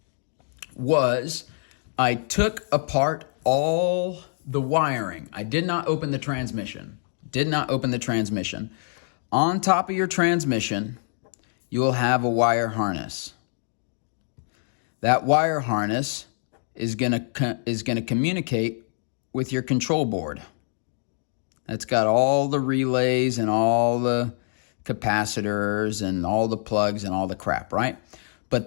was I took apart all the wiring. I did not open the transmission. On top of your transmission, you will have a wire harness. That wire harness is gonna communicate with your control board. That's got all the relays and all the capacitors and all the plugs and all the crap, right?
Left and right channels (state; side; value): silent; right; digital silence